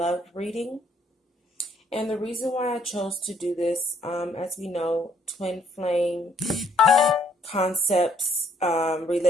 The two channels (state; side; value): normal; both; correlation 0.66